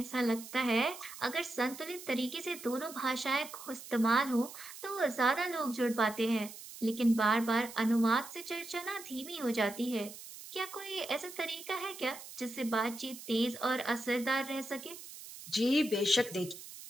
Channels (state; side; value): noise; right; hiss, 14 dB below the sound